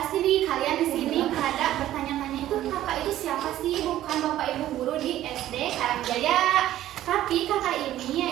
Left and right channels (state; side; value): quieter; left; 13.4 dB